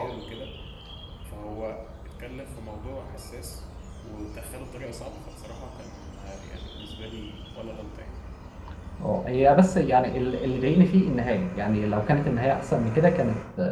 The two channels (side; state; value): both; identical; correlation 1.00